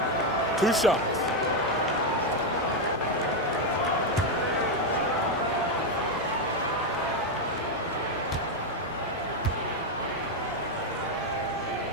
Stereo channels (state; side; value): normal; both; correlation 0.04